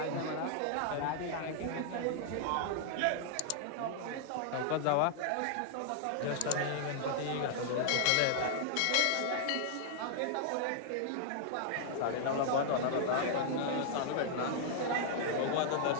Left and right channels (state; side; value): different; both; correlation -0.01